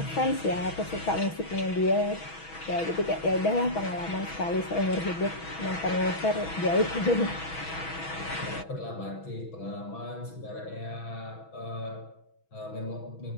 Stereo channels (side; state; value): right; late; 6.1 ms